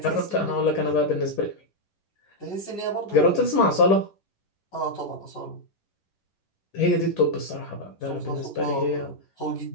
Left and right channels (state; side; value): late; right; 11 ms